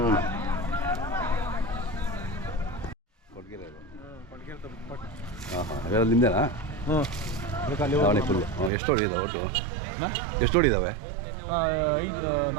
ನಿಂದೇನಾ? ದಾವಣಿ ಫುಲ್ಲು. ಎಷ್ಟು ಹೊಡಿದಾವೆ ಒಟ್ಟು? ಎಷ್ಟು ಹೊಡಿದಾವೆ?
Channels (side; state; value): left; drops out; at 8.7 s